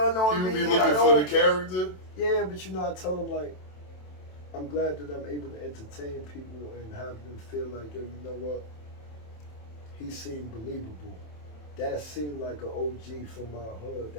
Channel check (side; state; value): right; late; 27 ms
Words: on me. You be looking for the character? Yeah, but you know, I tell them like, I'm glad that I'm able to entertain people and have them feel like, yo, you know what? He seemed believable. That seemed like an OG from my hood